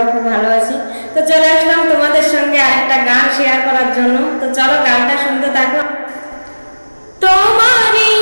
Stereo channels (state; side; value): inverted; both; correlation -1.00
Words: খুব ভালো আছি। তো চলে আসলাম তোমাদের সঙ্গে আরেকটা গান শেয়ার করার জন্য। তো চলো গানটা শুনতে থাকো। তোমারই